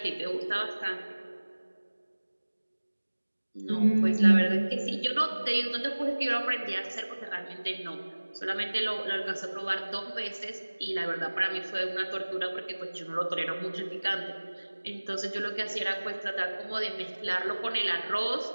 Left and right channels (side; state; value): both; inverted; correlation -1.00